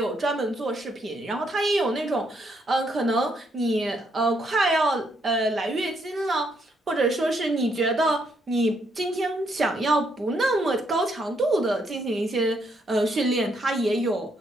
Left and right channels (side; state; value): both; normal; correlation 0.74